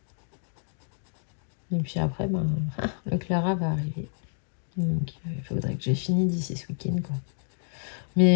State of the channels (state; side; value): silent; right; 59 dB below the other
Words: Et puis après, ben, le Clara va arriver. Donc, il faudrait que j'ai fini d'ici ce week-end, quoi.